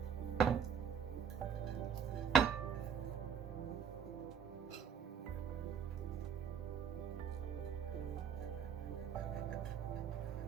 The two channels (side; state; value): left; quieter; 7.4 dB